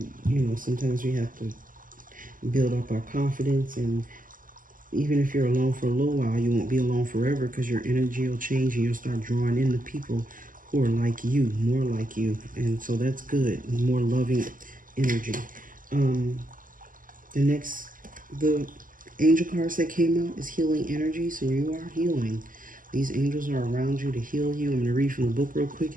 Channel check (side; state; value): left; late; 0.40 ms